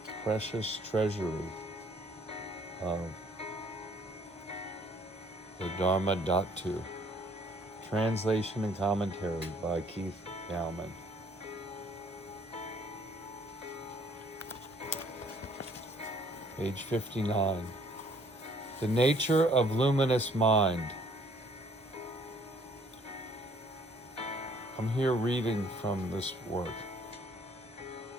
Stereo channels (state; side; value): normal; both; correlation 0.61